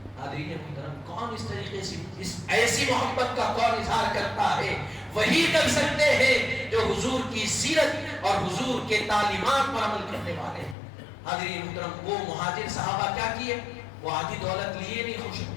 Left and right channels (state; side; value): drops out; right; at 10.8 s